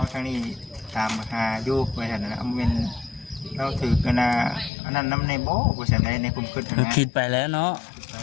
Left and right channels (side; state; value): right; drops out; at 4.7 s